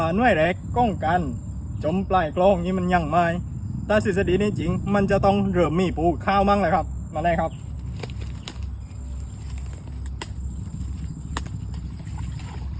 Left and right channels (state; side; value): identical; both; correlation 1.00